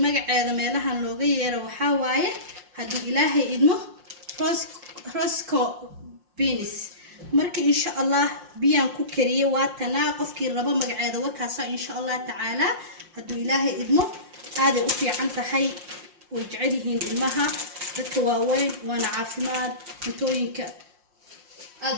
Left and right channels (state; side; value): late; left; 5.6 ms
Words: magaceeda meelahan looga yeero waxa waaye hadii ilaahay idmo rosco beans marka insha Allah biyaan ku kariye waa tanaa qofkii rabo magaceeda wakaasa insha Allah taala hadii ilaahay idmo aad u fiican tahay oo jecelihiin ilmaha dadka waaweyn waana caafimaad cuntooyinka aad